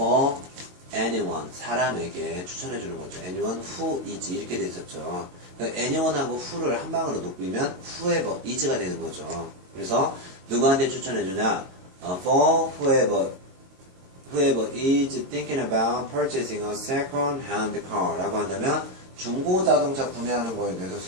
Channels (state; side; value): late; left; 22 ms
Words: anyone, 사람에게 추천해주는 거죠. anyone who is 이렇게 돼 있었죠. 그러니까 anyone하고 who를 한 방으로 높이면 whoever is가 되는 거죠. 그래서 누구한테 추천해주냐? For whoever is thinking about purchasing a second-hand car 라고 한다면 중고 자동차 구매하는 거에 대해서